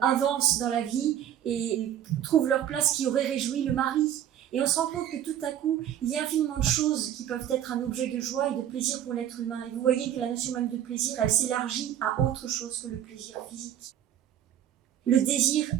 avancent dans la vie et trouvent leur place qui aurait réjoui le mari. Et on se rend compte que tout à coup, il y a infiniment de choses qui peuvent être un objet de joie et de plaisir pour l'être humain. Et vous voyez que la notion même de plaisir, elle s'élargit à autre chose que le plaisir physique. Le désir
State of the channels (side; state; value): left; quieter; 10.6 dB